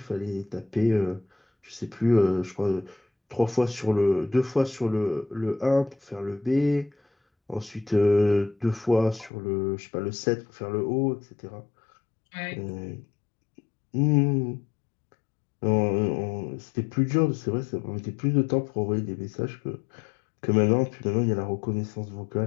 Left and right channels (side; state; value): right; drops out; at 9.3 s